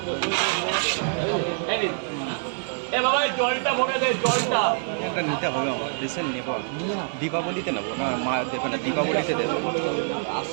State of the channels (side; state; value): left; silent; digital silence